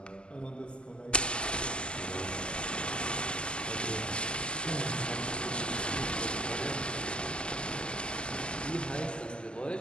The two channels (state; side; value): late; right; 0.056 ms